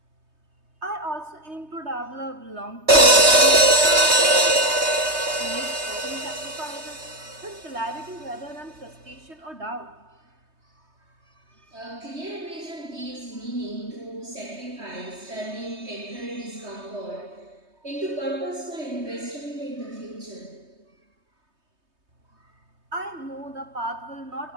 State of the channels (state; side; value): late; left; 3.2 ms